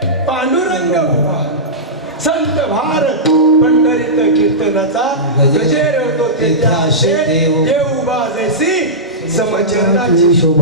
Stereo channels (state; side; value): normal; both; correlation -0.15